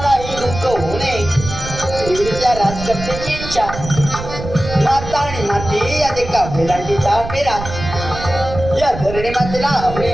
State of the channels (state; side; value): noise; right; rumble, 9 dB below the sound